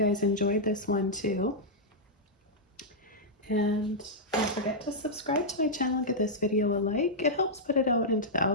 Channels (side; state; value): both; normal; correlation -0.08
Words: enjoyed this one too. And don't forget to subscribe to my channel and give this video a like. It helps put it out into the